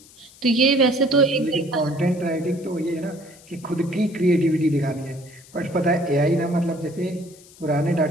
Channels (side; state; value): left; noise; hiss, 23 dB below the sound